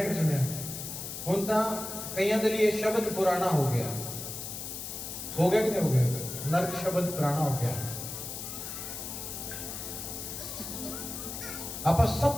कि सुनिया? हुण तां कईयां दे लिए शब्द पुराना हो गया कि नहीं हो गया? नरक शब्द पुराना हो गया। आप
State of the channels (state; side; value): noise; left; hiss, 7 dB below the sound